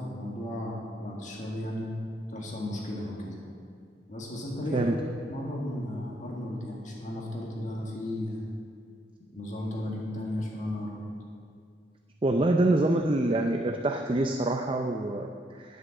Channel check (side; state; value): both; normal; correlation 0.73